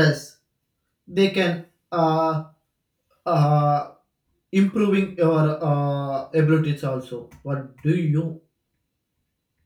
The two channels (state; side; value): identical; both; correlation 1.00